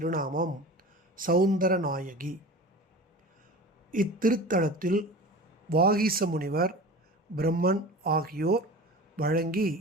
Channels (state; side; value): normal; both; correlation 0.35